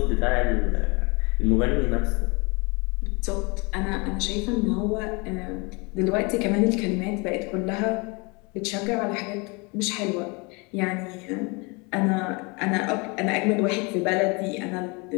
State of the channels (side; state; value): right; quieter; 29.1 dB